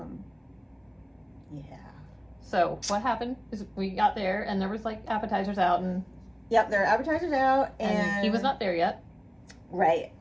yeah. So what happened is we got there, and there was like appetizers out, and yep, there are appetizers out, and he was not there yet. Right,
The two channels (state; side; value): identical; both; correlation 1.00